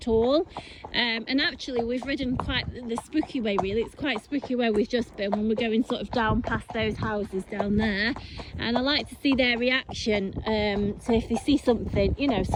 all. And actually we've ridden quite the spooky way, really. It's quite spooky where we've just been when we're going sort of down past those houses down there. And I like to see their reaction. So if they see something, you know,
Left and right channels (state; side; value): identical; both; correlation 1.00